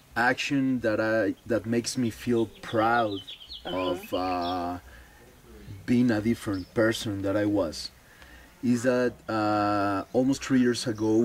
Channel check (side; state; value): both; identical; correlation 1.00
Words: action that makes me feel proud of being a different person that I was, is that almost 3 years